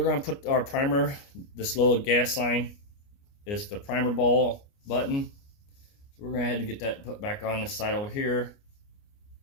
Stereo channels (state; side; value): late; right; 29 ms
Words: gonna put our primer. This little gas line is the primer ball button. So we're gonna head and get that put back on this side over here,